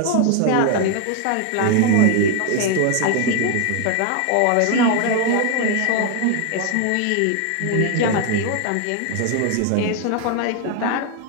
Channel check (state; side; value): different; both; correlation 0.01